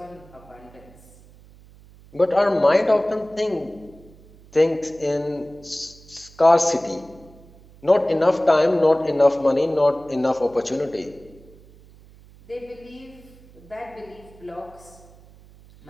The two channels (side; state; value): right; noise; hum, 24 dB below the sound